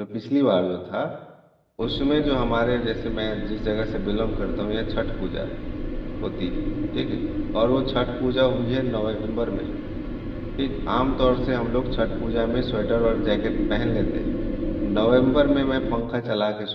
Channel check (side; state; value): both; identical; correlation 1.00